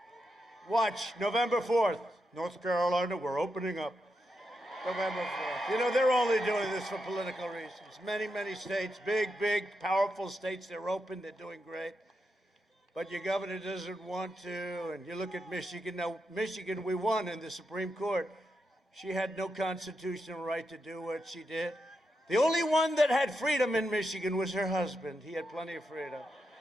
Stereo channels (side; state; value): both; normal; correlation 0.85